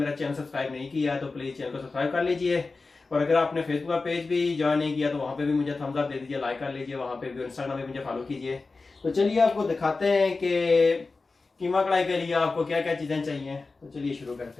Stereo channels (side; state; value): right; quieter; 3.9 dB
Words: चैनल सब्सक्राइब नहीं किया है तो प्लीज़ चैनल को सब्सक्राइब कर लीजिए। और अगर आपने फेसबुक का पेज भी ज्वाइन नहीं किया तो वहाँ पे भी मुझे थम्स अप दे दीजिए, लाइक कर लीजिए। वहाँ पे भी, इंस्टाग्राम में मुझे फॉलो कीजिए। तो चलिए आपको दिखाते हैं कि कीमा कढ़ाई के लिए आपको क्या क्या चीज़ें चाहिए। तो चलिए शुरू